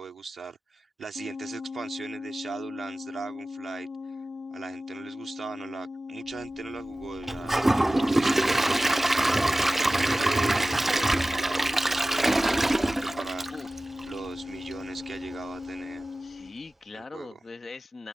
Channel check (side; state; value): both; normal; correlation 0.96